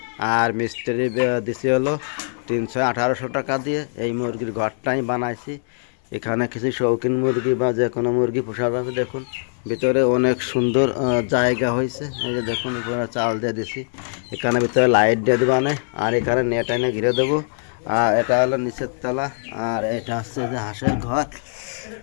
আর মিস্ত্রি দিছি হলো 300-1800 টাকা দিয়ে। এই মুরগির ঘরটা আমি বানাইছি। এখানে কিছু শৌখিন মুরগি বা যে কোনো মুরগি পোষা যাবে। দেখুন ভিতরে অনেক সুন্দর জায়গা হয়েছে। এই যে দেখুন উপরে চাল দিয়ে দিছি, এখানে ভিতরে লাইট দিয়ে দেবো আর এখানে নেট এনে ঘিরে দেবো। আর এটা হলো নিচের তলা, আর এটা হচ্ছে যে হাঁসের ঘর।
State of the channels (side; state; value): right; silent; 64 dB below the other